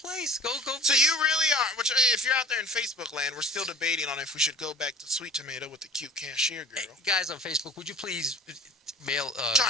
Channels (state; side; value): normal; both; correlation 0.42